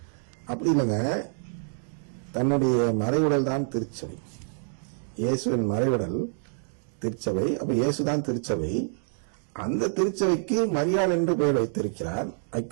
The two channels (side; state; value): left; silent; digital silence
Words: அப்படி இல்லைங்க, தன்னுடைய மறைவுடல் தான் திருச்சபை. இயேசுவின் மறைவுடல் திருச்சபை. அப்ப இயேசுதான் திருச்சபை. அந்த திருச்சபைக்கு மரியாள் என்று பெயர் வைத்திருக்கிறார்.